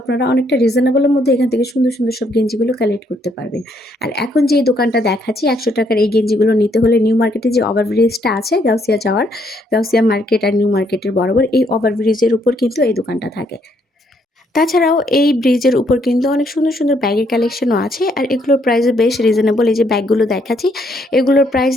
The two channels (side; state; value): both; normal; correlation 0.71